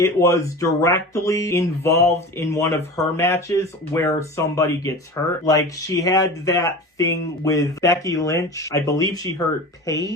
was directly involved in one of her matches where somebody gets hurt. Like, she had that thing with Becky Lynch. I believe she hurt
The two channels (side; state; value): both; normal; correlation 0.33